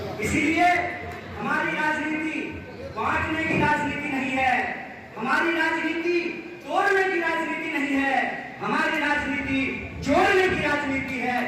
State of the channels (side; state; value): both; identical; correlation 1.00